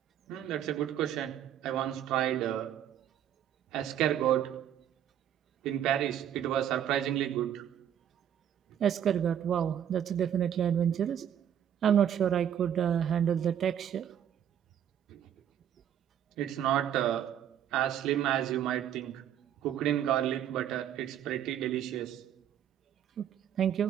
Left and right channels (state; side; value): quieter; left; 9.9 dB